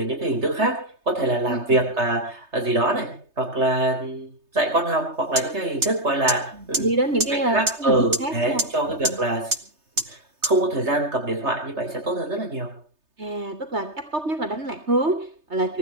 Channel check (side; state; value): left; late; 3.3 ms